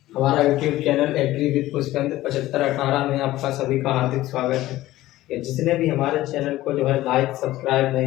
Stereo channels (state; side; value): quieter; right; 16.0 dB